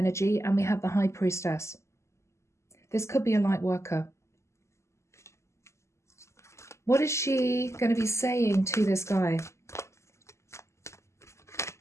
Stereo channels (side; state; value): right; late; 0.13 ms